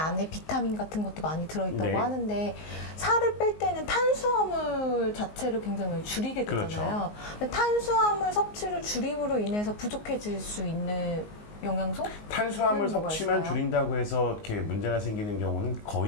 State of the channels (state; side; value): late; right; 19 ms